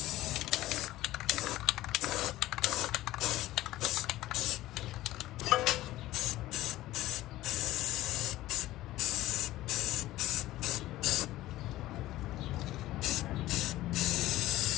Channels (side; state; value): right; quieter; 16.0 dB